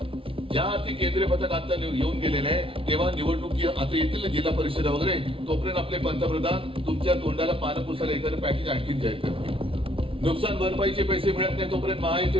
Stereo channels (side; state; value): left; late; 0.26 ms